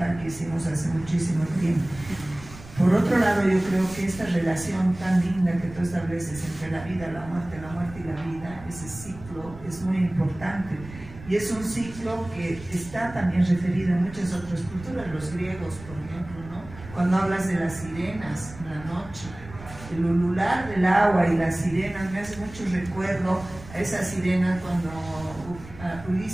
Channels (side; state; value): right; noise; rumble, 16 dB below the sound